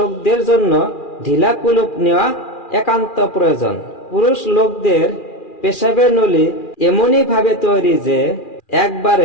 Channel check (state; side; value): late; right; 2.4 ms